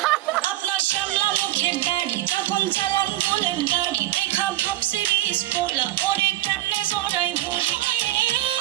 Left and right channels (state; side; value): quieter; left; 15.7 dB